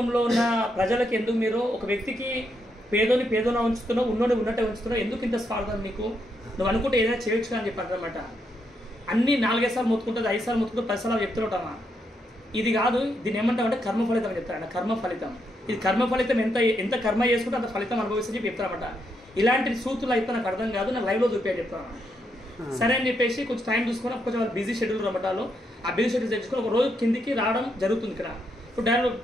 ఉన్న ప్రజలకు ఎందుకు మీరు ఒక వ్యక్తికి పేదోని ఉంచుతున్నావు, ఉన్నోని ఉన్నట్టే ఉంచుతున్నావు, ఎందుకు ఇంత స్వార్థం నీకు? నువ్వు అనుకుంటే ఏదైనా చేయొచ్చు అని చెప్పారు అనమాట. అన్ని 4-5 సార్లు మొత్తుకుంటుంది, 5 సార్లు మొత్తుకుంటూ 10 సార్లు చెప్తుంటామా? ఇది కాదు, దీన్ని ఏమంటామంటే కర్మ ఫలితం అని చెప్తారు. కర్మ ఫలితం, ఇది కర్మ ఫలితం. ఎంత కర్మ చేసుకుంటే అంత ఫలితం అనుభవిస్తని చెప్పి చెప్తారన్నమాట. ఇలాంటి సూత్రులు అయితే నాకు అర్థం కాదు, నాకు లైవ్లో చూపించని చెప్తాను. సరే అని చెప్పేసి కొంచెం టైం చూసుకొని కొంచెం వాళ్ళు బిజీ షెడ్యూల్ రమ్మటాలు, ఆ బిజీ షెడ్యూల్ తెచ్చుకొని ఒక రోజు కిందికి రావడం జరుగుతుంది. ఇక్కడ ఇప్పుడు డైరెక్ట్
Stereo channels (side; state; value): both; normal; correlation 0.79